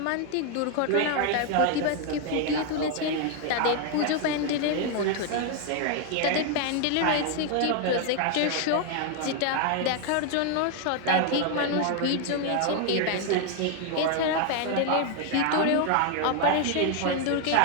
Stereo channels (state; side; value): different; both; correlation 0.00